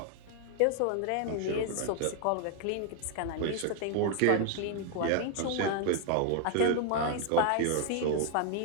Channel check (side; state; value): both; different; correlation 0.00